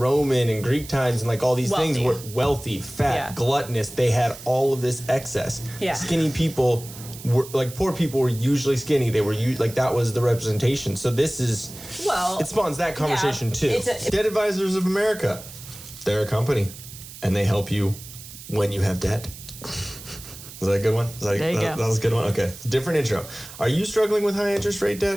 and Greek times and like all these things, were wealthy, fat, gluttonous. They had all of this excess. Yeah. Skinny people were like, poor people were usually skinny. They were like, that was the representation. So this is, it spawns that conversation too. Debt Advisors of America, they're a company and they help you when you have debt. Was that a good one? There you go. That was a good one? Okay. Different intro. Are you struggling with high interest rate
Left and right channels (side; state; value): right; noise; hiss, 15 dB below the sound